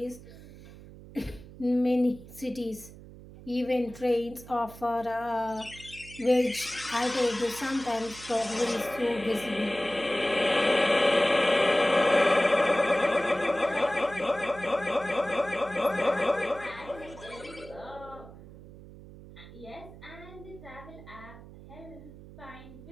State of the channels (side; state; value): right; noise; hum, 17 dB below the sound